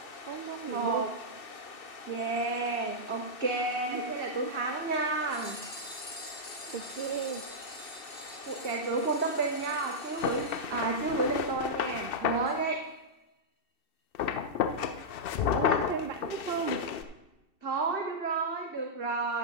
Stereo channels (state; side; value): late; right; 2.7 ms